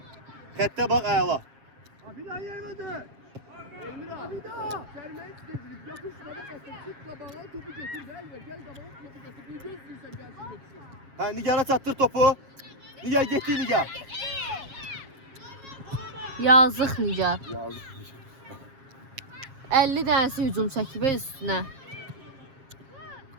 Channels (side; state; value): left; late; 7.4 ms